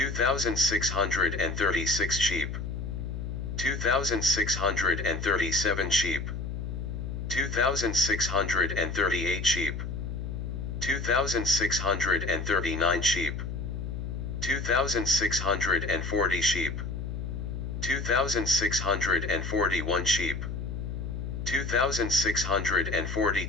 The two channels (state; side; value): noise; left; hum, 5 dB below the sound